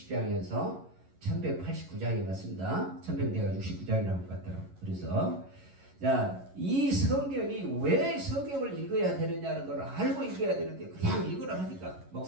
1189장이 맞습니다. 1169장이라고 같더라고요. 그래서 자, 이 성경이 왜 성경을 읽어야 되느냐는 걸 알고 읽어야 되는데 그냥 읽으라 하니까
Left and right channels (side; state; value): left; late; 11 ms